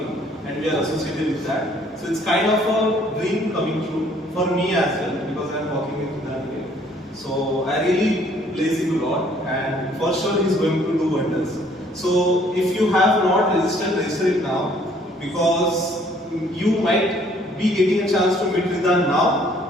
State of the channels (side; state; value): both; normal; correlation 0.61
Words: and we are associated with that. So it's kind of a dream coming true for me as well, because I'm working with Ridhaan here. So I really bless him a lot, and for sure he's going to do wonders. So if you have not registered, register it now, because you might be getting a chance to meet Ridhaan